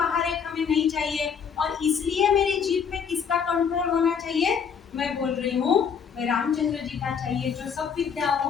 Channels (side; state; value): right; quieter; 6.9 dB